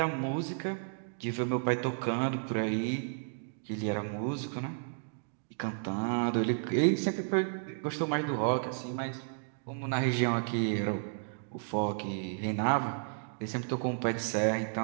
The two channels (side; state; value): left; silent; digital silence